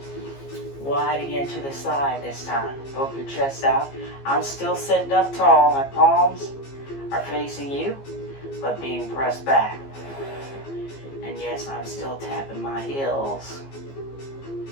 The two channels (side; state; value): right; late; 15 ms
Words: Wide again to the side this time. Poke your chest out. I'm still sitting up tall. My palms are facing you, but being pressed back. And yes, I'm still tapping my heels.